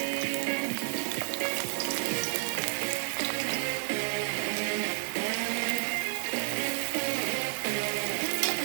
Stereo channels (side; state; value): left; silent; 57 dB below the other